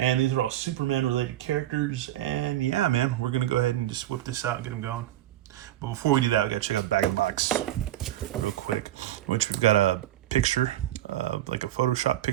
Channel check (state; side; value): quieter; left; 13.5 dB